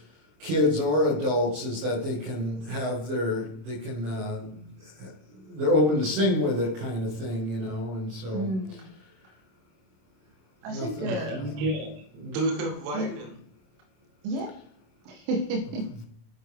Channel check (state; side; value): late; left; 26 ms